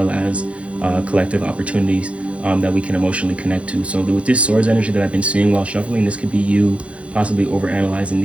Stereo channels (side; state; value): left; late; 0.062 ms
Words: as collective opportunities that we can emotionally connect to. So with this swords energy that I've been seeing while shuffling, this could be you possibly overanalyzing